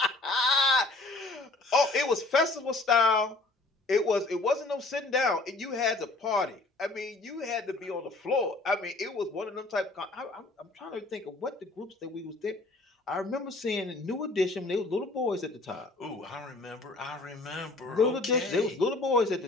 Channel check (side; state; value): right; quieter; 3.2 dB